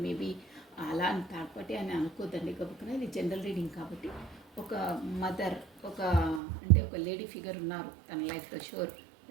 మేబీ అలా అని థర్డ్ పార్టీ అని అనుకోద్దండి. గబుక్కున ఇది జనరల్ రీడింగ్ కాబట్టి ఒక మదర్, ఒక అంటే ఒక లేడీ ఫిగర్ ఉన్నారు తన లైఫ్లో షూర్.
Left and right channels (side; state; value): left; drops out; at 6.4 s